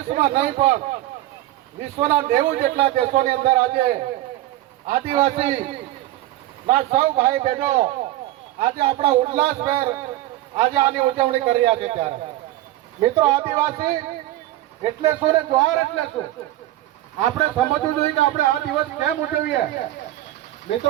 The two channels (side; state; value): left; quieter; 15.5 dB